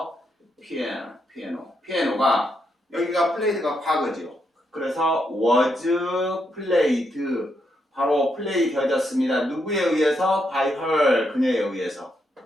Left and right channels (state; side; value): normal; both; correlation 0.80